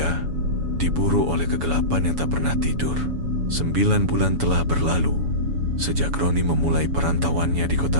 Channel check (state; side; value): late; left; 7.0 ms